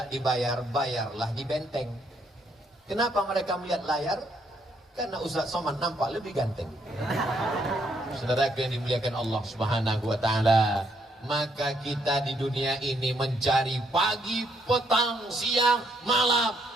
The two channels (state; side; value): normal; both; correlation 0.72